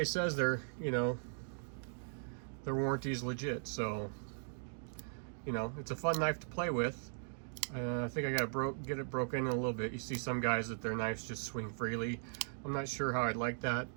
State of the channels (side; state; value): left; silent; digital silence